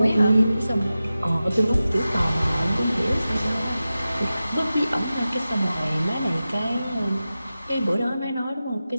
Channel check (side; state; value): both; inverted; correlation -0.94